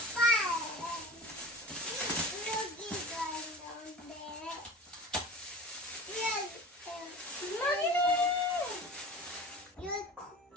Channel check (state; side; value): normal; both; correlation 0.36